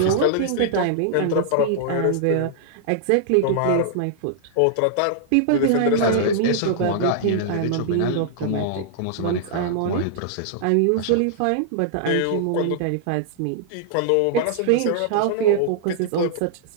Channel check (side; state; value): both; different; correlation -0.01